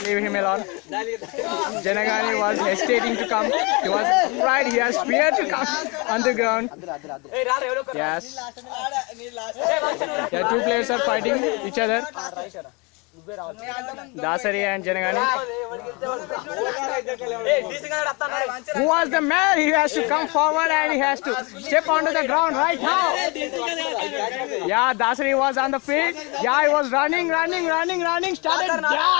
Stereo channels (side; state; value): right; quieter; 29.0 dB